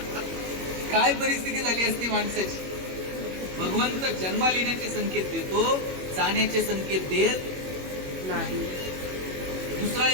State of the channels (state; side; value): late; left; 21 ms